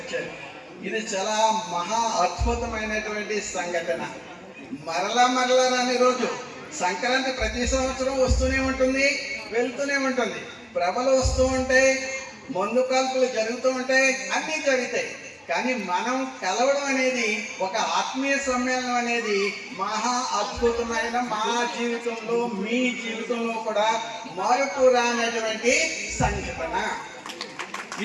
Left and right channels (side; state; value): both; identical; correlation 1.00